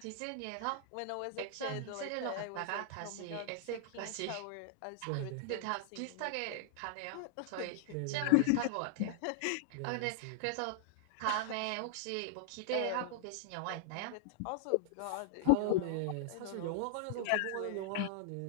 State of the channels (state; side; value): different; both; correlation -0.01